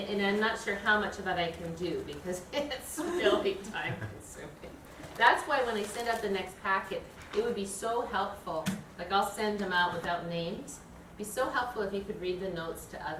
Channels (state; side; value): identical; both; correlation 1.00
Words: I'm not sure how much of that I can do, because it's really time consuming. That's why when I send out the next packet, it would be so helpful. Like, I'll send them out without names. It'd be so helpful if you could read the notes to